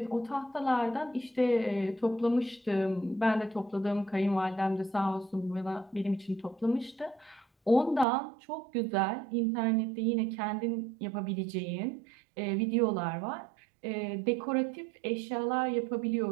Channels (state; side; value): drops out; left; at 8.1 s